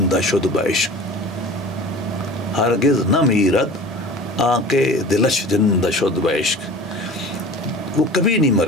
شد بعشق, ہرگز نہ میرد آنکے دلش زندہ شد بعشق. وہ کبھی نہیں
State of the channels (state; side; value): normal; both; correlation 0.39